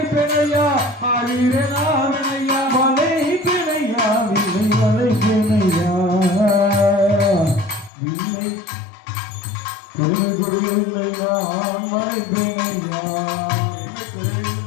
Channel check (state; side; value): drops out; right; at 7.9 s